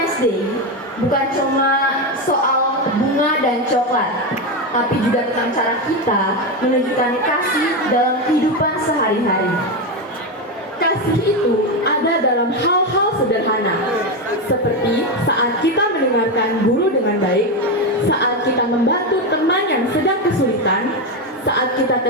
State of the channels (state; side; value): normal; both; correlation 0.12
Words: Day bukan cuma soal bunga dan coklat, tapi juga tentang cara kita menunjukkan kasih dalam kehidupan sehari-hari. Kasih itu ada dalam hal-hal sederhana, seperti saat kita mendengarkan guru dengan baik, saat kita membantu teman yang sedang kesulitan, saat kita